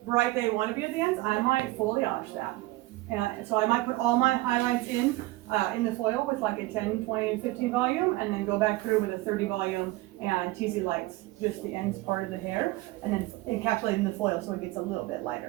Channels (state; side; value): quieter; left; 19.5 dB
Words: bright they want to be at the ends. I might foliage that. And so I might put all my highlights in the foil with like a 10, 20, 15 volume, and then go back through with a 30 volume and teasy lights, just the ends part of the hair, and then encapsulate in the foil so it gets a little bit